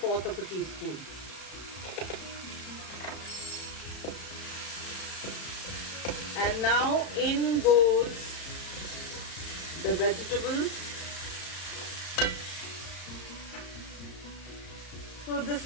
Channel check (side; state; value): right; late; 34 ms